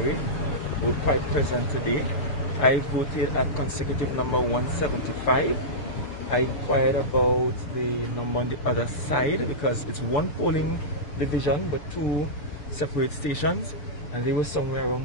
were quite present today. I voted at consecutive number 175. I inquired about the number on the other side because it's one polling division but 2 separate stations, and they were somewhere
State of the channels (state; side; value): late; right; 6.9 ms